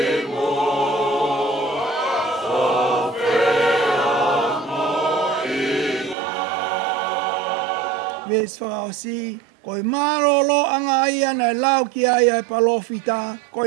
Ves whakaosi, koe marolo anga ia na lau ki aia e palofita,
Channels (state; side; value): drops out; left; at 6.2 s